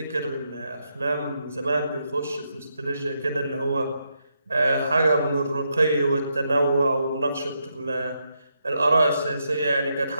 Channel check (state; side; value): inverted; both; correlation -0.81